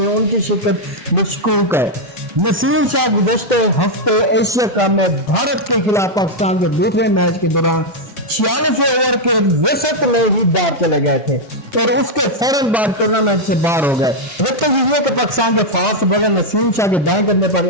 उनकी शिरकत मशकूक है। नसीम शाह गुज़श्ते हफ्ते एशिया कप में भारत के खिलाफ पाकिस्तान के दूसरे मैच के दौरान 46 ओवर के वसत में ही बाहर चले गए थे और उसके फौरन बाद टूर्नामेंट से बाहर हो गए। के पाकिस्तान के फास्ट बॉलर नसीम शाह के दाएं करने पर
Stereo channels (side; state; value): both; normal; correlation -0.02